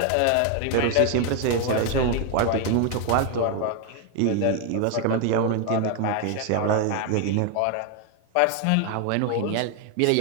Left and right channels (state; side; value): different; both; correlation 0.01